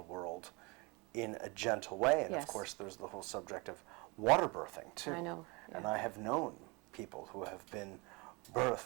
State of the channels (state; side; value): quieter; left; 27.4 dB